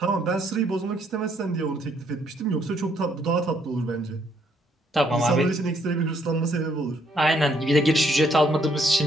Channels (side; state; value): both; normal; correlation 0.69